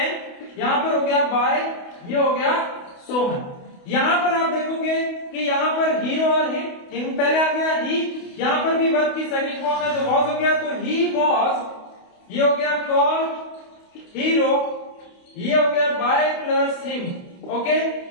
यहाँ पर हो गया बाय, ये हो गया सोहन। यहाँ पर आप देखोगे कि यहाँ पर हीरो और हिम पहले आ गया ही, यहाँ पर भी वर्ब की सेकंड फॉर्म है तो वॉज हो गया, तो ही वॉज, ये हो गया कॉल हीरो, ये हो गया बाय प्लस हिम। ओके,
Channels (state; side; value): late; right; 28 ms